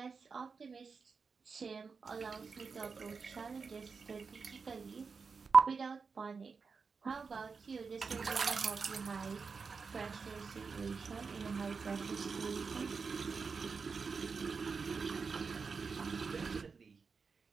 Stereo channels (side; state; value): left; quieter; 5.1 dB